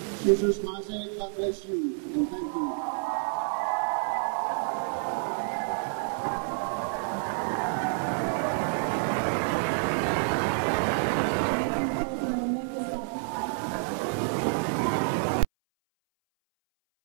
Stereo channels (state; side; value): silent; left; 59 dB below the other